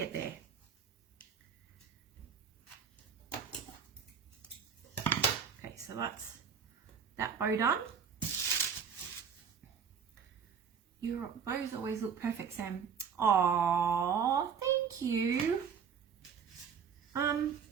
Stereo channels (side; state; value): left; quieter; 6.8 dB